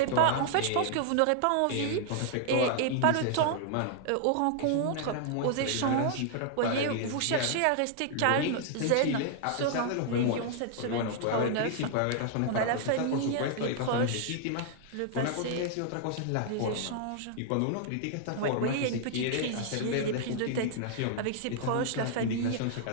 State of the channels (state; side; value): different; both; correlation 0.00